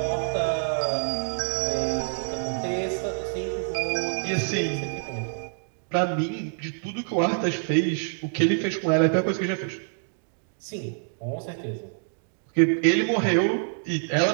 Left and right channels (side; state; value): left; silent; digital silence